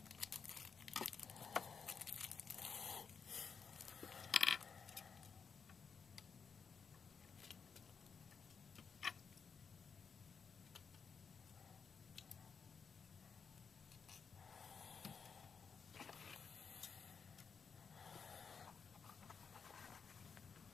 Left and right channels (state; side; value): quieter; right; 6.0 dB